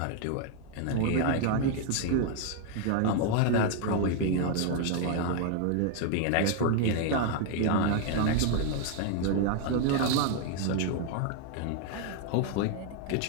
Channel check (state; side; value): different; both; correlation 0.00